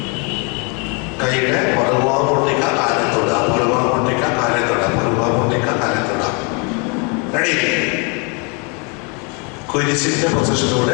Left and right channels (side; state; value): right; quieter; 33.8 dB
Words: കൈയുടെ പുറകുഭാഗം പൊട്ടിക്ക, കാലിൽ തൊടുക. പുറകുഭാഗം പൊട്ടിക്ക, കാലിൽ തൊടുക. പുറകുഭാഗം പൊട്ടിക്ക, കാലിൽ തൊടുക. റെഡി? കുരിശിന്റെ